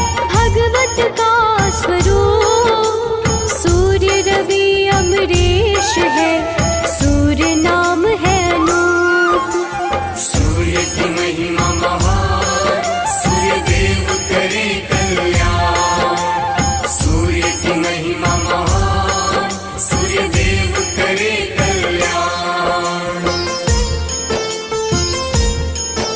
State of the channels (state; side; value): identical; both; correlation 1.00